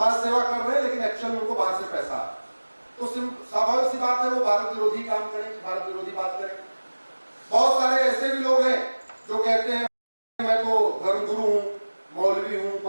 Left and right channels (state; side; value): inverted; both; correlation -1.00